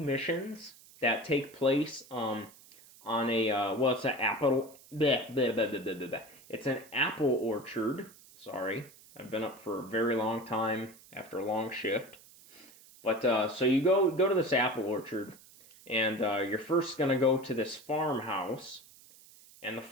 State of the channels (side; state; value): right; noise; hiss, 23 dB below the sound